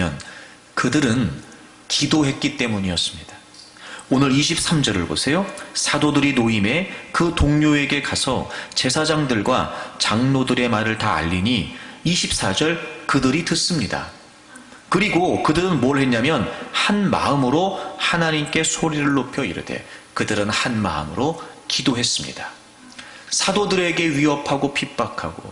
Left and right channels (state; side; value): identical; both; correlation 1.00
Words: 그들은 기도했기 때문이었습니다. 오늘 23절을 보세요. 사도들이 노임에 그 동료에게 가서 제사장들과 장로들의 말을 다 알리니 24절 그들이 듣습니다. 그리고 그들은 뭘 했냐면 한 마음으로 하나님께 소리를 높여 이르되 그들은 한 마음으로 기도했습니다. 사도들에게 위협하고